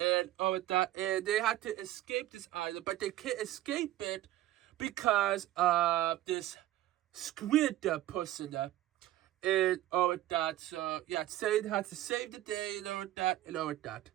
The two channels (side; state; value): left; quieter; 14.5 dB